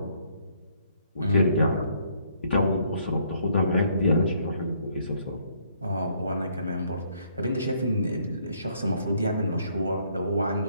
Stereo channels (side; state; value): both; inverted; correlation -0.67